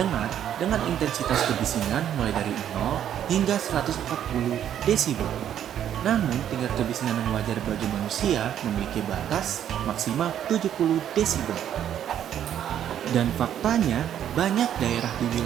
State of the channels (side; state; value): left; quieter; 10.2 dB